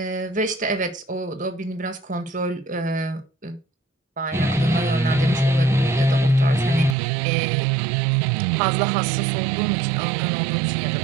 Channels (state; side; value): drops out; left; at 7.0 s